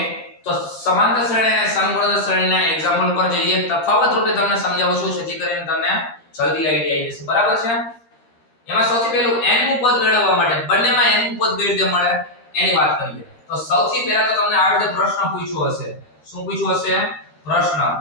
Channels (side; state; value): right; late; 13 ms